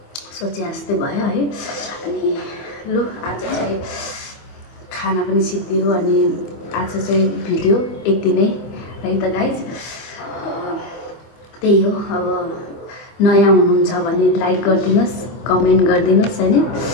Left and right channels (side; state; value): right; late; 25 ms